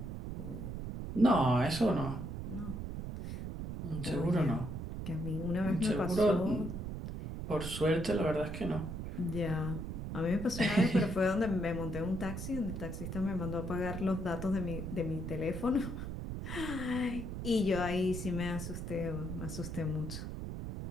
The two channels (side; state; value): right; noise; rumble, 6 dB below the sound